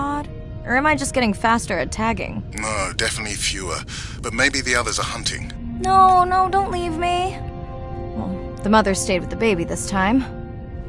Or am I just getting faster at tagging? No, definitely fewer. But maybe the others are hunting. No, don't leave me. Well, the mother stayed with the baby this time.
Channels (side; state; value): both; identical; correlation 1.00